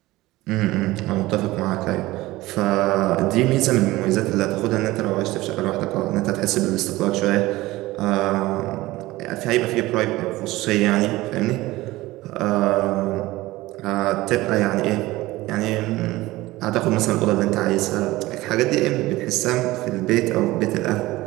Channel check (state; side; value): quieter; left; 18.6 dB